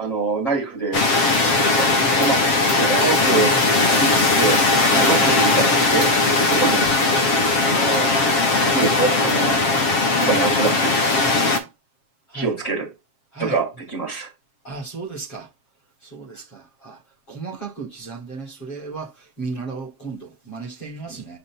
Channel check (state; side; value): late; right; 7.4 ms